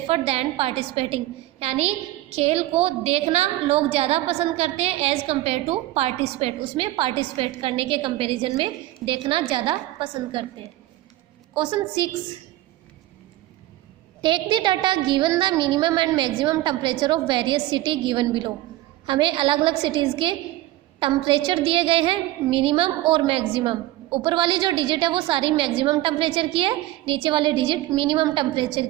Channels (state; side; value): quieter; left; 16.2 dB